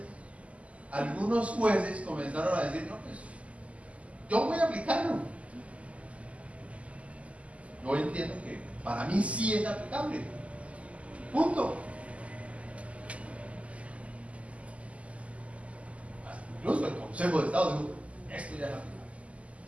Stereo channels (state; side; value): late; left; 0.065 ms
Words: algunos jueces comenzaron a decir: no, pues yo voy a aplicarlo. Yo entiendo que para mí sí es aplicable. Punto. Incluso el Consejo de Estado dijo: esto ya es aplicable.